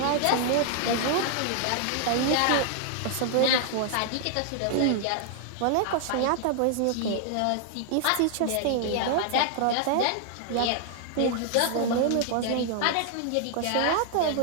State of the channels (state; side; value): different; both; correlation 0.00